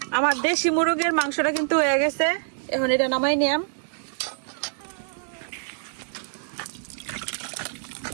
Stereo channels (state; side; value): silent; left; digital silence